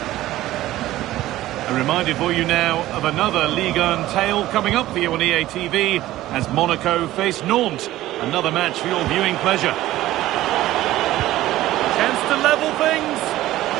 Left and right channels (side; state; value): left; quieter; 15.3 dB